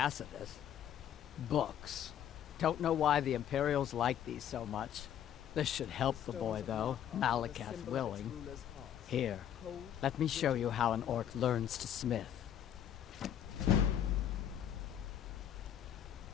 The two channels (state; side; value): quieter; right; 10.0 dB